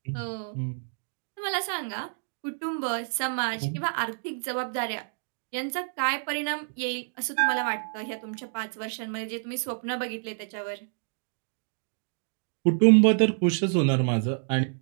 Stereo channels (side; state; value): left; silent; digital silence